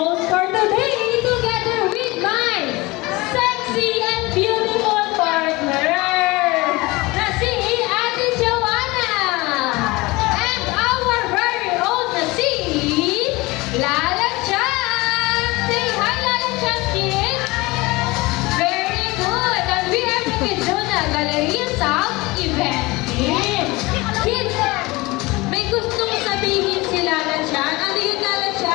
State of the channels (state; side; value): quieter; right; 22.4 dB